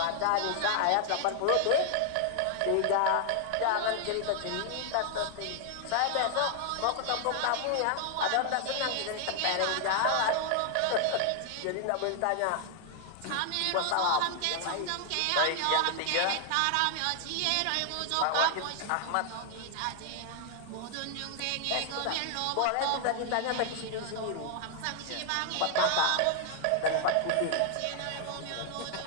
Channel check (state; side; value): different; both; correlation 0.00